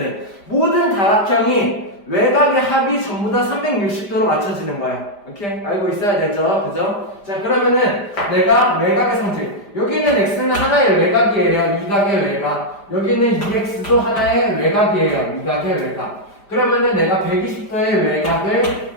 모든 다각형이 외곽의 합이 전부 다 360도로 맞춰지는 거야. 오케이? 알고 있어야 되죠? 그죠? 자, 그러면은 내가 외곽의 성질. 여기 있는 x는 하나의 외곽이에요. 이각의 외곽. 여기 있는 2x도 하나의 외곽이에요. 이각의 외곽. 그러면은 내가 120도의 외곽을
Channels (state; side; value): late; right; 5.0 ms